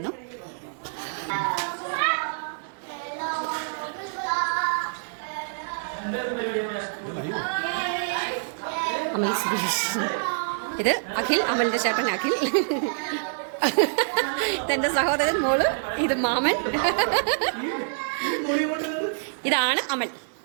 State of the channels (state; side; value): silent; left; 61 dB below the other